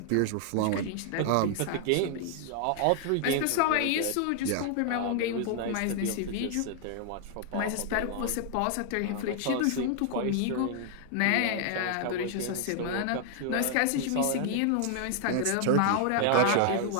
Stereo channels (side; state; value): both; different; correlation 0.00